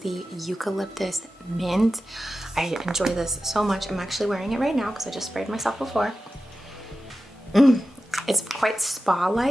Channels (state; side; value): normal; both; correlation 0.93